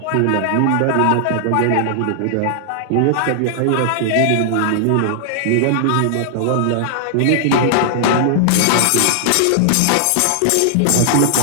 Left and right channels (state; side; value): different; both; correlation -0.01